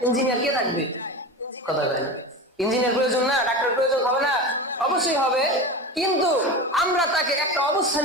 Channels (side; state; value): both; normal; correlation 0.26